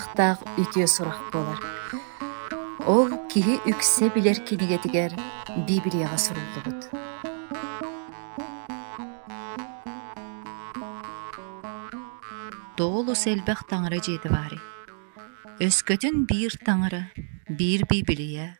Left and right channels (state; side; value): silent; left; 60 dB below the other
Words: үтіе сурах болар. Ол кихи үксе билер кинигетигер Библияға суруллубут. Доолус элбэх таңыры жеди бари. Өскөтүн бир таңыры, бир Библия,